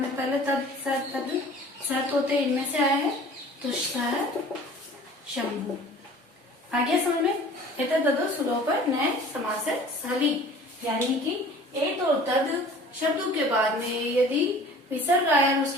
पहले तद सत होते इनमें से आए हैं, तो शंभु। आगे समझ में। एतद तदो सुलोप पर नए समास हली, यानी कि एत और तद शब्दों के बाद में यदि विसर्ग आया और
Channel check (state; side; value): normal; both; correlation 0.46